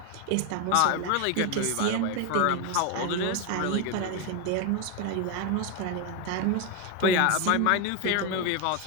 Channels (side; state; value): both; different; correlation 0.02